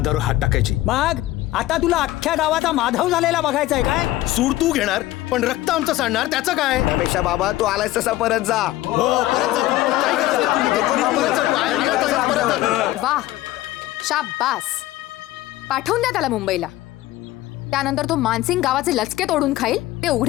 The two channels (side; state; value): right; quieter; 16.2 dB